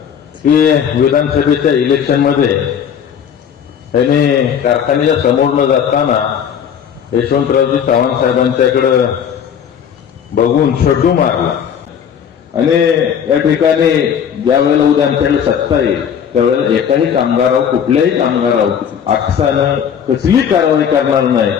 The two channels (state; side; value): quieter; right; 8.2 dB